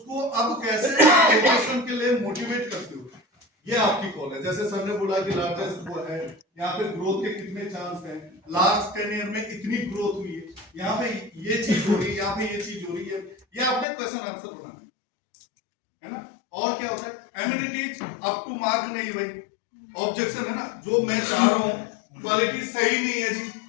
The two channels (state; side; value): drops out; right; at 13.9 s